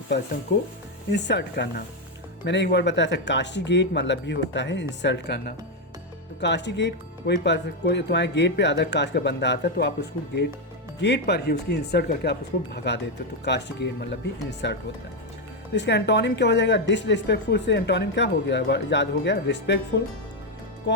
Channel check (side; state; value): both; normal; correlation 0.05